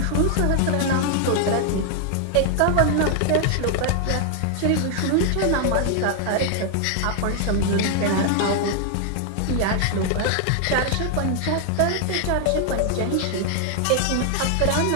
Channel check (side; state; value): both; different; correlation 0.00